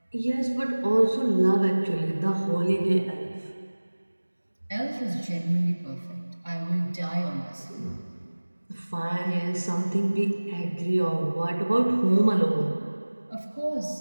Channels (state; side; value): inverted; both; correlation -1.00